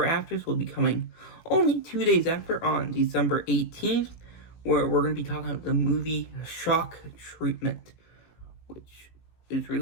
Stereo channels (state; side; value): late; right; 18 ms